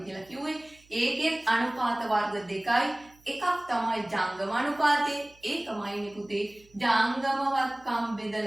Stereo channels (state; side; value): noise; right; hum, 29 dB below the sound